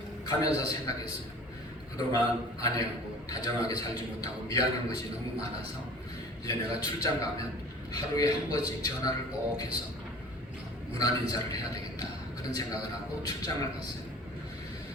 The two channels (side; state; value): both; normal; correlation 0.44